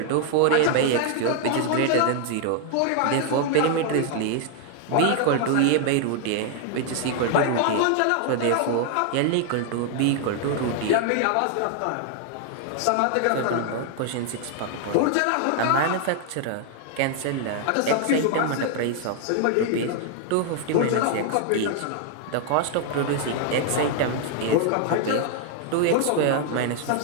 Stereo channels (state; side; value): different; both; correlation 0.00